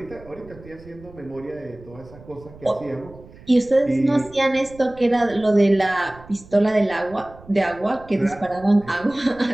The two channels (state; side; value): noise; right; rumble, 21 dB below the sound